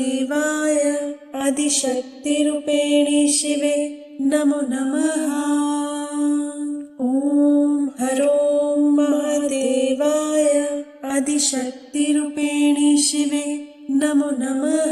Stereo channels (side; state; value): both; identical; correlation 1.00